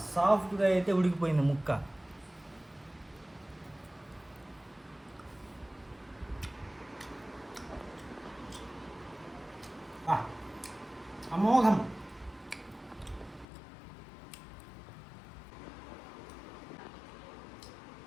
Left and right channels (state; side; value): drops out; right; at 13.5 s